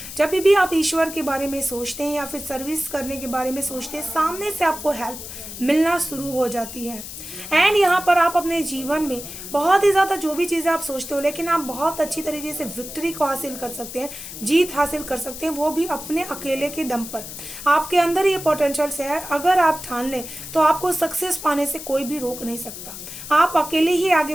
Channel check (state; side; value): noise; left; hiss, 11 dB below the sound